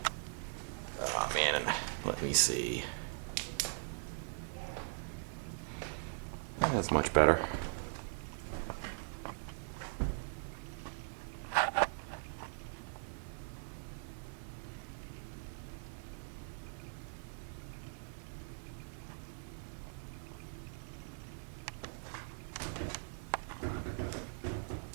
Oh man, let me see. That's much better.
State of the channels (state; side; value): silent; left; 51 dB below the other